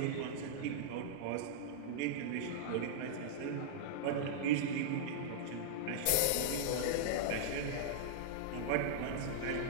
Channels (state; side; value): different; both; correlation -0.02